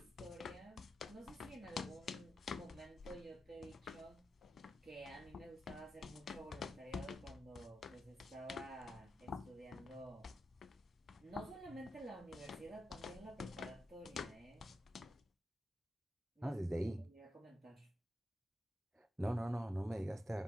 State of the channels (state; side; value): normal; both; correlation 0.88